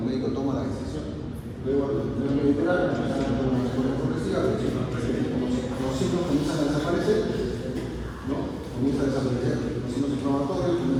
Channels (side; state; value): both; identical; correlation 1.00